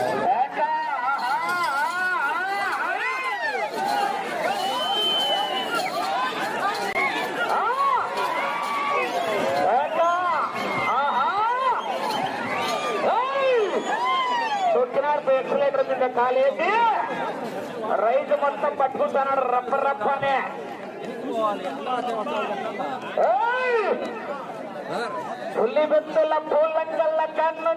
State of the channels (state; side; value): identical; both; correlation 1.00